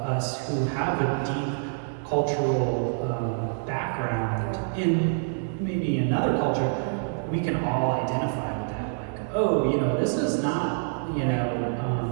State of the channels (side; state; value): left; silent; 60 dB below the other